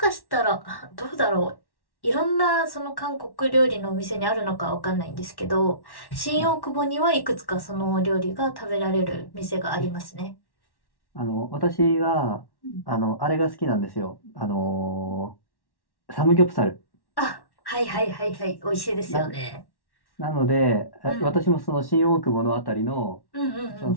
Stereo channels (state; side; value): late; right; 1.1 ms